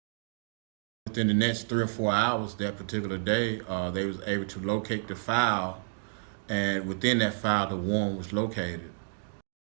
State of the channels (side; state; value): left; silent; digital silence